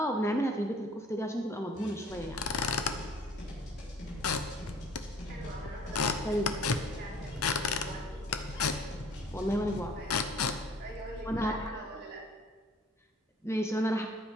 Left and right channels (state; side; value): normal; both; correlation 0.53